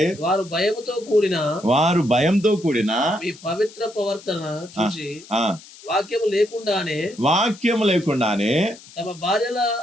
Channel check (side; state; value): left; noise; hiss, 20 dB below the sound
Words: వారు భయముతో కూడిన మీ పవిత్ర ప్రవర్తన చూసి వాక్యము లేకుండానే తమ